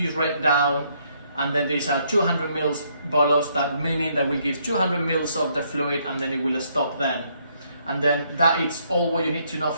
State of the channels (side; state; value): both; inverted; correlation -0.70